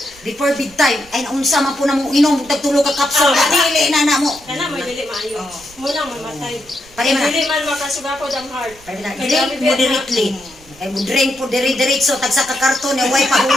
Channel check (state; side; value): noise; right; rumble, 24 dB below the sound